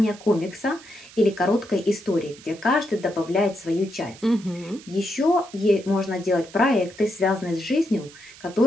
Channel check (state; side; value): noise; right; hiss, 20 dB below the sound